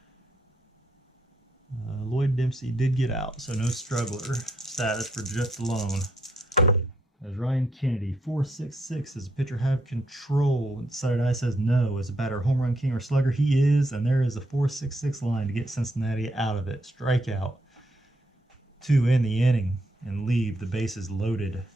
Lloyd Dempsey did get out, so no struggler status for Jeff Dilone. As Ryan Kennedy, 4-6-6. Does the pitcher have control? Decided eye says no. Is the batter home run king or slugger? He is, and there is a 4-6-6 line to get Cincinnati out of it. Strikeout. 2 in the inning and leave the bases loaded.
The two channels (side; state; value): both; normal; correlation 0.76